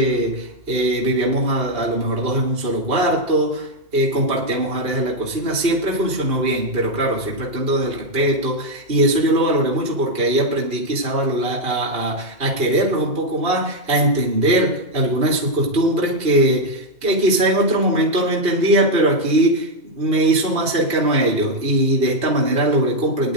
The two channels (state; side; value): late; left; 2.8 ms